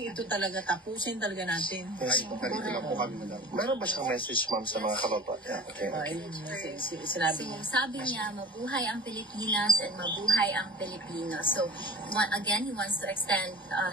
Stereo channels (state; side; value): normal; both; correlation 0.40